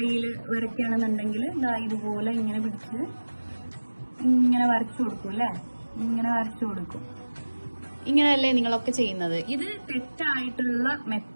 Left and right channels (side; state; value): both; inverted; correlation -1.00